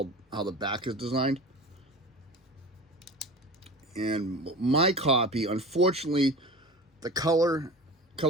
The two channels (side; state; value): both; normal; correlation 0.34